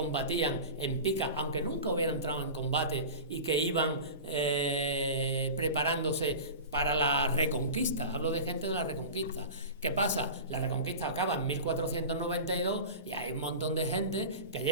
en pica, aunque nunca hubieran entrado en combate, y que iban preparándose para la Reconquista. Hablo de gente de la Reconquista. ¿Qué pasa? La Reconquista acaba en 1492 y hay un montón de gente que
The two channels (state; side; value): inverted; both; correlation -0.32